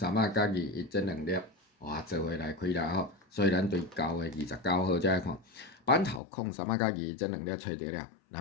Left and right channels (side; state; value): right; drops out; at 6.2 s